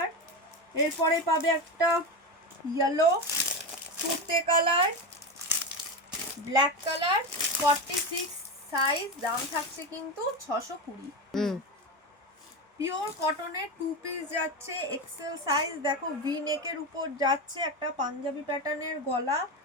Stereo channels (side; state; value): both; normal; correlation 0.17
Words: এরপরে পাবে একটা ইয়েলো, তুতে কালার, ব্ল্যাক কালার, 46 সাইজ, দাম থাকছে কিন্তু 620। পিওর কটনের 2 পিস যাচ্ছে, এক্সেল সাইজ। দেখো ভি নেকের উপর যাচ্ছে, একটা পাঞ্জাবি প্যাটার্নের গলা,